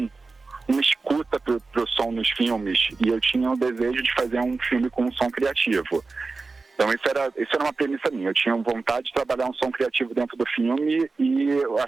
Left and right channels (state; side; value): quieter; left; 3.9 dB